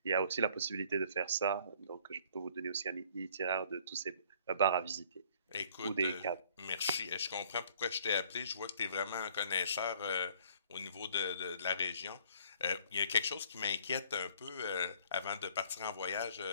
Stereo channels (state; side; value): inverted; both; correlation -0.58